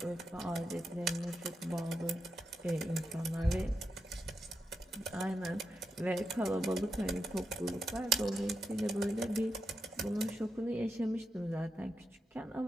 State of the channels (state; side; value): normal; both; correlation 0.85